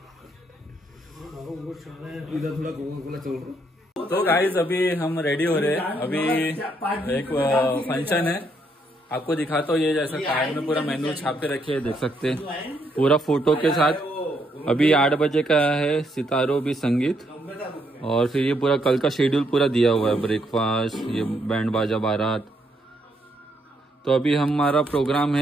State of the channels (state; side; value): normal; both; correlation 0.74